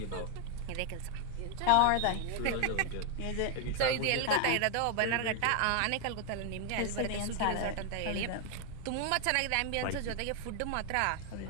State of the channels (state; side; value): different; both; correlation 0.00